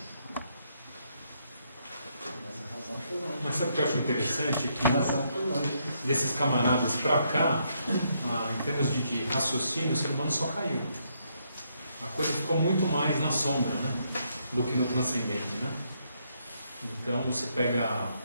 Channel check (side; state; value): both; inverted; correlation -0.75